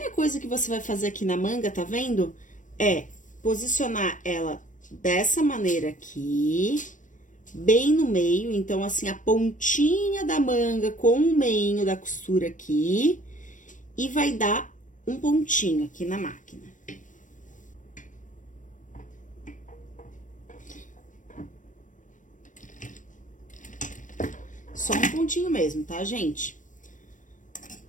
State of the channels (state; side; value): late; right; 0.37 ms